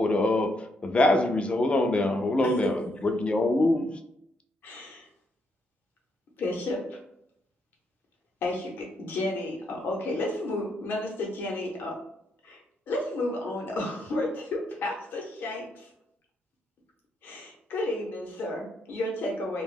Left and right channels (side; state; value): both; normal; correlation 0.76